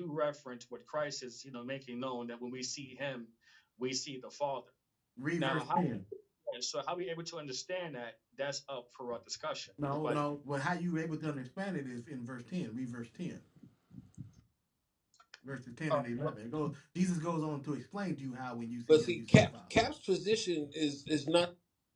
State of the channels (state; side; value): identical; both; correlation 1.00